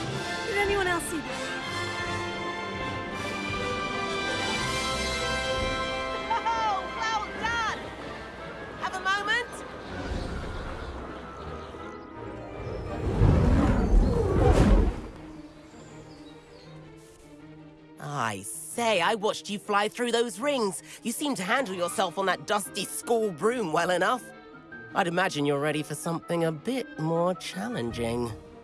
Did anyone else see that? Oh, well done! Have a moment? I say, I watched you fly through those rings. You seem to handle yourself on that dusty school broom well enough. I'd imagine you're ready for something a bit more challenging.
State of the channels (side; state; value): both; identical; correlation 1.00